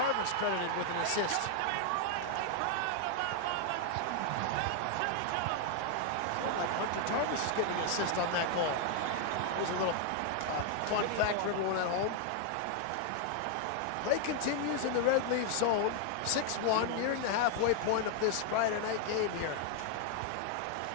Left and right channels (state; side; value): different; both; correlation 0.00